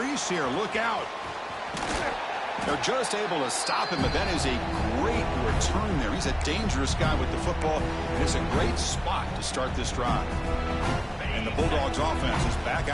here. Look out. They're just able to stop him, but that is a great return there. He's a dangerous guy with the football, and it's a great spot to start this drive. And the Bulldogs offense is back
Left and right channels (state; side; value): identical; both; correlation 1.00